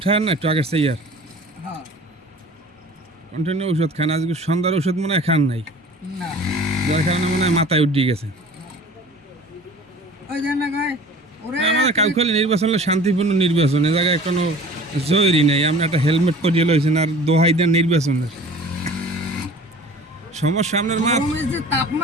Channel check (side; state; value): both; normal; correlation 0.44